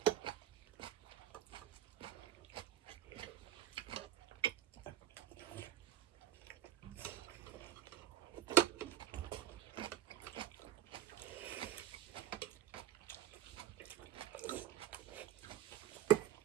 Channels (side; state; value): left; quieter; 11.7 dB